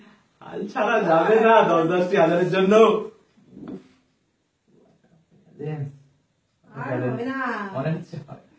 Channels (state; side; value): identical; both; correlation 1.00